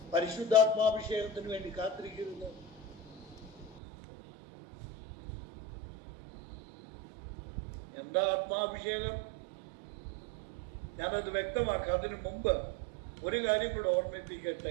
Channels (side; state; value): left; drops out; at 3.8 s